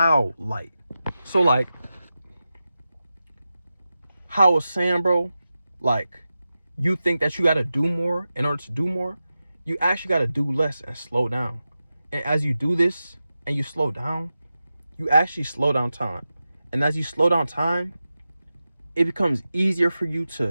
light. So like how I was saying, bro, like you think that you got to do more in order to do more. You actually got to do less and slow down. And as you do this and you slow down, you actually slow down time. And as you slow down time, it becomes easier for you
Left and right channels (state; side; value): inverted; both; correlation -0.92